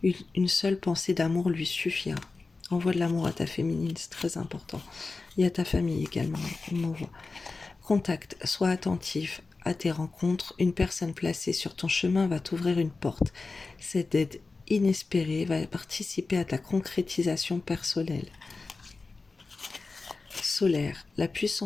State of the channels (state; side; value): quieter; right; 3.9 dB